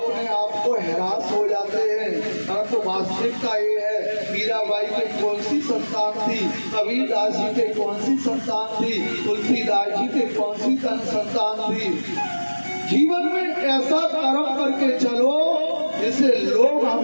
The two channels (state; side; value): inverted; both; correlation -1.00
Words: आप को हैरास हो जाते हैं। परंतु वास्तविकता ये है, मीराबाई के कौन सी संतान थी, कबीरदास जी के कौन सी संतान थी, तुलसीदास जी के कौन सी संतान थी। जीवन में ऐसा कर्म करके चलो जिसे लोग